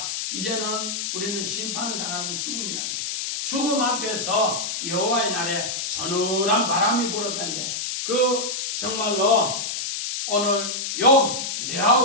이제는 우리는 심판을 당하는 죽음이라는 거예요. 죽음 앞에서 여호와의 날에 서늘한 바람이 불었다는데 그 정말로 오늘 욥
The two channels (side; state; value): left; noise; hiss, 3 dB below the sound